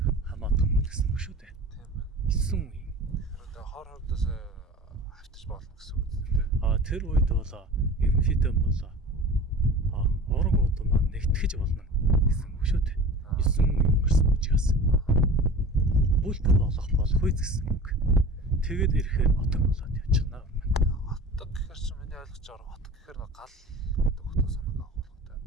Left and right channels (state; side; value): normal; both; correlation 0.38